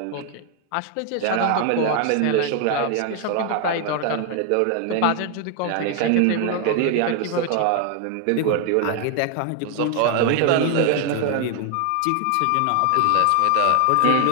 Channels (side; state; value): both; different; correlation 0.00